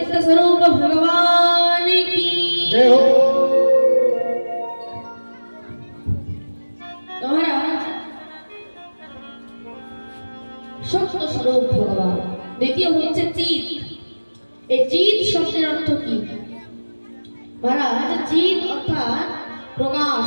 স্বরূপ ভগবান কি জয় হো। মহারাজ সত্য স্বরূপ ভগবান। দ্বিতীয় হচ্ছে চিৎ। এই চিৎ শব্দের অর্থ কি মহারাজ? চিৎ অর্থাৎ প্রকাশ,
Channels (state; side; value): inverted; both; correlation -1.00